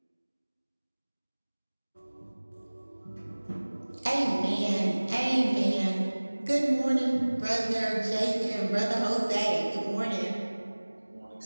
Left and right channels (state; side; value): inverted; both; correlation -1.00